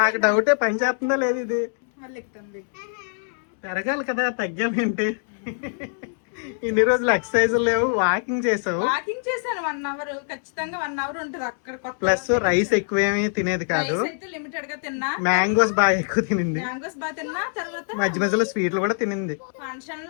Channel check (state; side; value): silent; right; 63 dB below the other